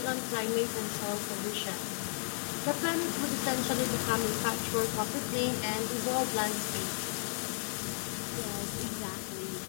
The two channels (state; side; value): silent; right; 55 dB below the other